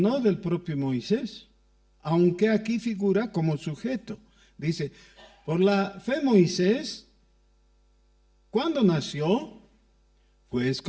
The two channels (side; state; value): both; identical; correlation 1.00